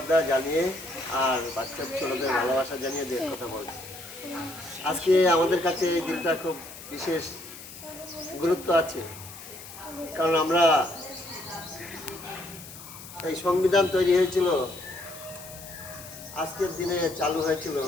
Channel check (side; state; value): left; noise; hiss, 15 dB below the sound